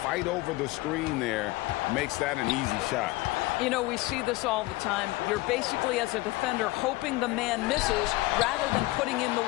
over the screen there makes that an easy shot. You know, we see this all the time. You're basically, as a defender, hoping the man misses rather than putting in the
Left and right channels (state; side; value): quieter; right; 20.5 dB